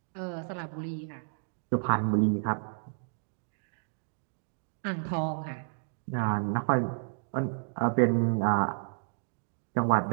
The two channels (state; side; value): silent; left; digital silence